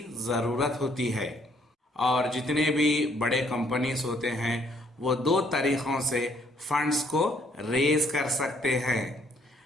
ज़रूरत होती है। और जितने भी बड़े कंपनीज होते हैं वो दो तरीक़ों से फंड्स को रेज कर सकते हैं।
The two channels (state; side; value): normal; both; correlation 0.66